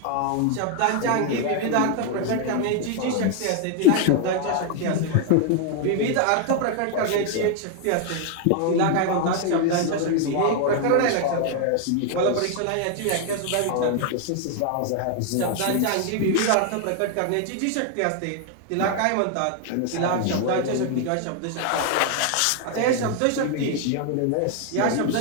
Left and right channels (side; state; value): both; different; correlation 0.00